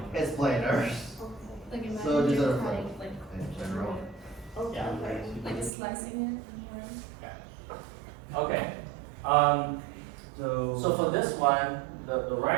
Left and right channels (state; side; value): drops out; left; at 5.7 s